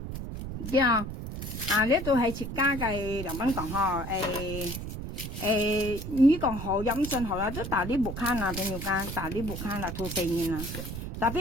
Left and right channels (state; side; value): noise; right; rumble, 7 dB below the sound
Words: 對啊呢度係設家嘅梁斌講呵你講好飲信好啦，都大啲木坑啊，朋友間大啲木坑啦，吐4年啦。特